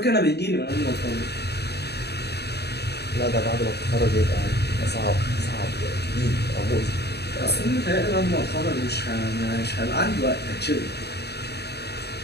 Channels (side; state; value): right; late; 0.48 ms